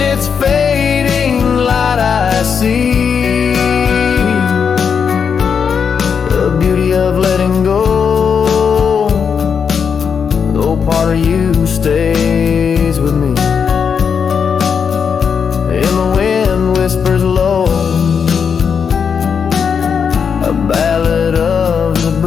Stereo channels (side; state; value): right; quieter; 6.6 dB